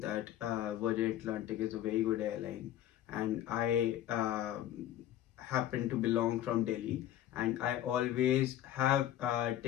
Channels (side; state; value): right; quieter; 12.3 dB